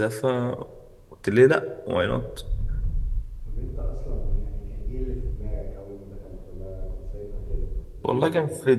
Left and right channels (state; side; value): identical; both; correlation 1.00